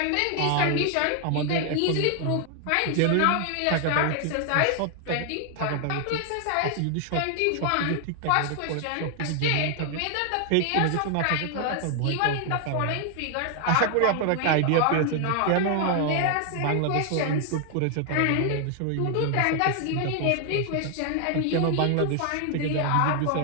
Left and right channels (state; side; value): different; both; correlation 0.00